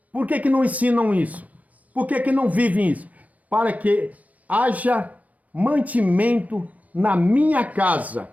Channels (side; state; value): left; late; 0.070 ms